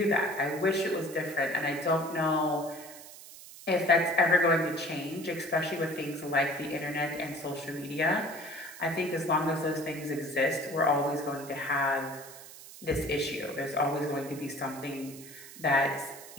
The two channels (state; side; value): noise; right; hiss, 16 dB below the sound